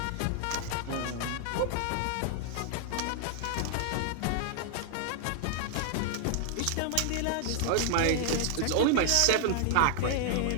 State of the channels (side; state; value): both; different; correlation 0.00